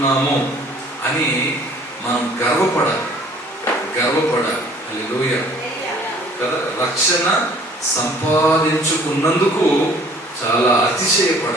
అని మనం గర్వపడాలి. హల్లెలూయా కదా. రక్షణ సంపాదించుకున్నందుకు చాలా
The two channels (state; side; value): normal; both; correlation 0.54